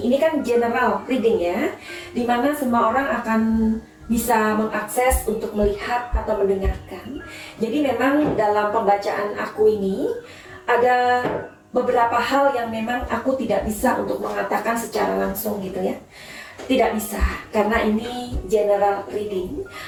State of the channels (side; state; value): both; identical; correlation 1.00